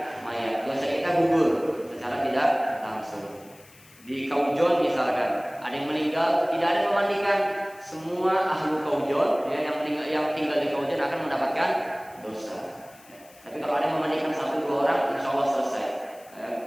mayat. Dosa kita gugur secara tidak langsung. Di Kaujon misalkan, ada yang meninggal, tidak ada yang memandikan, semua ahlu Kaujon ya, yang tinggal di Kaujon akan mendapatkan dosa. Tapi kalau ada yang memandikan 1-2 orang, insya Allah selesai,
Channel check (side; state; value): left; noise; hiss, 25 dB below the sound